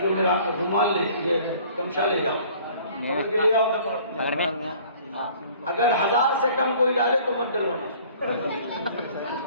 میرا رومال لے یہ تمشا لے جاؤ پکڑ کے لے آؤ پکڑ میں اگر 1000 سے کم کوئی ڈالے تو مت ڈلوانا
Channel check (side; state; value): both; inverted; correlation -0.52